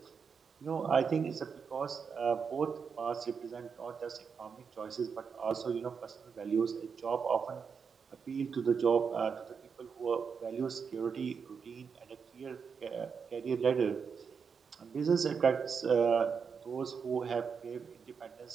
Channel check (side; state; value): left; quieter; 6.1 dB